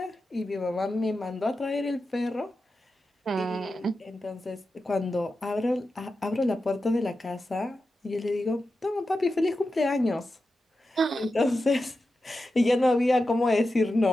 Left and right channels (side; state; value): both; normal; correlation 0.91